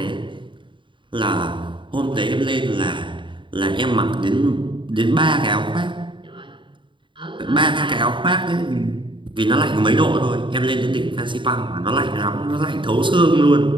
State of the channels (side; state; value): left; late; 0.24 ms